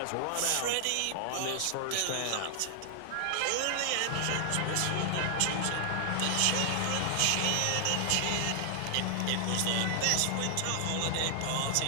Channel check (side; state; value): both; different; correlation 0.00